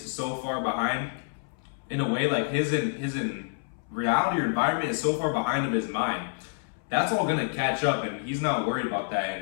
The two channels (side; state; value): right; silent; 59 dB below the other